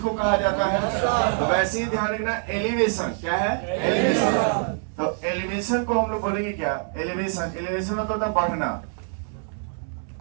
को कहा जाता है। तो वैसे ही ध्यान रखना, एलिवेशन क्या है? एलिवेशन। तो एलिवेशन को हम लोग बोलेंगे क्या? एलिवेशन। एलिवेशन मतलब होता है बढ़ना।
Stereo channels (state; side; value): silent; left; 59 dB below the other